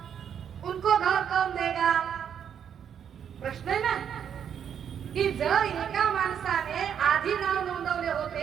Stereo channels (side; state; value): left; quieter; 8.4 dB